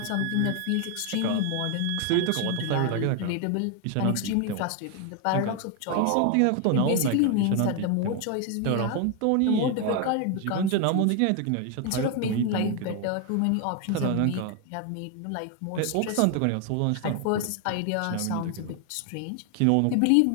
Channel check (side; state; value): both; different; correlation 0.01